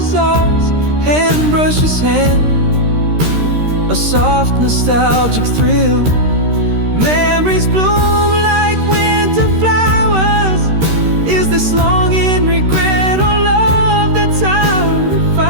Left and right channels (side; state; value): left; late; 13 ms